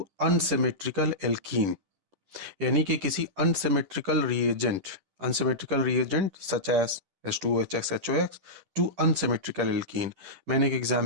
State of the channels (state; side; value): late; left; 10 ms